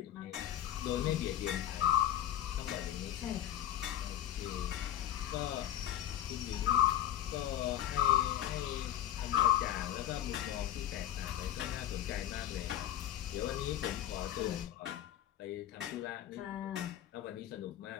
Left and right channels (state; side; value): quieter; right; 11.8 dB